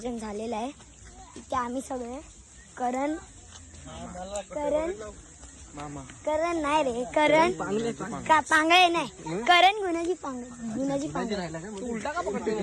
झालेला आहे. इथे आम्ही सगळे करण नाही रे करण पांगळे नाही करण गुणाची पांगळे उलटा का पकडतो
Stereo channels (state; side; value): identical; both; correlation 1.00